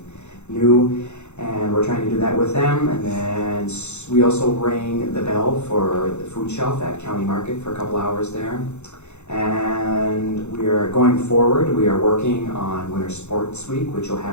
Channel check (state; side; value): late; right; 0.82 ms